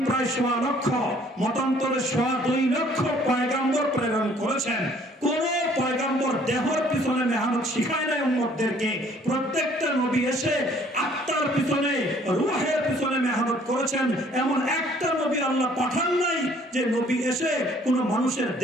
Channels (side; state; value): both; normal; correlation 0.59